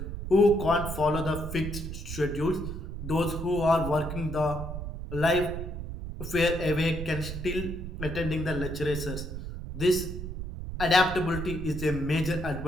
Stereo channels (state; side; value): noise; right; rumble, 7 dB below the sound